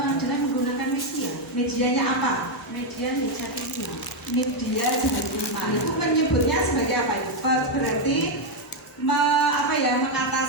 Dengan menggunakan media. Medianya apa? Media jari 5. Media jari 5. Itu menyebutnya sebagai apa itu? Berarti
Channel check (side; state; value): both; normal; correlation 0.03